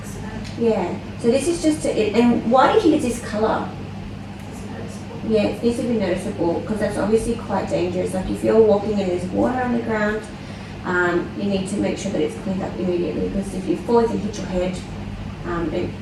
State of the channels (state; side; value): identical; both; correlation 1.00